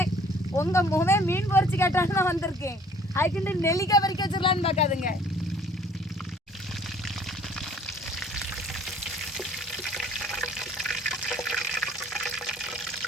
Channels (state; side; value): normal; both; correlation 0.55